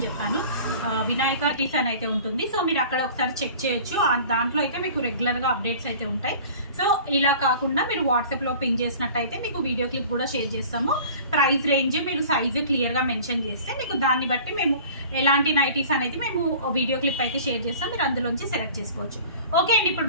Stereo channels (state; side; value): inverted; both; correlation -0.44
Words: చెప్పాను. వినాయక నైటీస్ అని అయితే ఉంటుంది. సో మీరు అక్కడ ఒకసారి చెక్ చేయొచ్చు. దాంట్లో అయితే మీకు రెగ్యులర్గా అప్డేట్స్ అయితే ఉంటాయి. సో ఇలా కాకుండా మీరు వాట్సాప్లో పింగ్ చేసినట్టయితే మీకు వీడియో క్లిప్ కూడా షేర్ చేస్తాము. ప్రైస్ రేంజ్ మీరు సైజు క్లియర్గా మెన్షన్ చేస్తే మీకు దాన్ని బట్టి మేము ఎలాంటి నైటీస్ అనేది మేము వీడియో క్లిప్ అయితే షేర్ చేస్తాం. మీరు అందులోంచి సెలెక్ట్ చేసుకోవచ్చు. ఓకే అండి, ఇప్పుడు